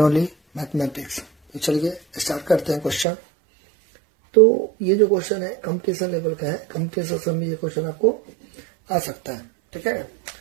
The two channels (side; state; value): left; drops out; at 3.1 s